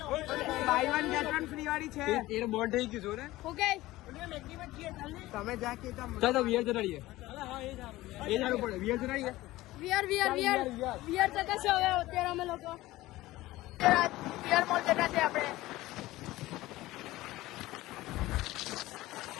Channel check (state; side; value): quieter; right; 17.6 dB